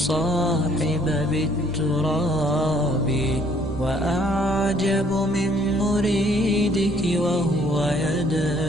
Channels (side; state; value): both; normal; correlation 0.62